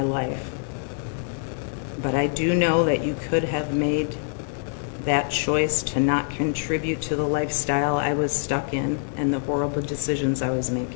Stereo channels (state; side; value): silent; right; 62 dB below the other